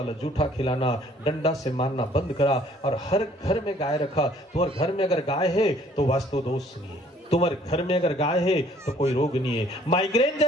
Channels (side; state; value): both; normal; correlation 0.59